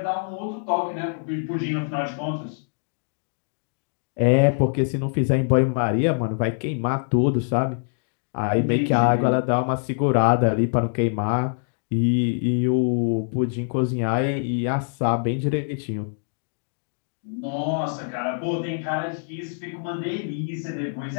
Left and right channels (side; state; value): right; silent; digital silence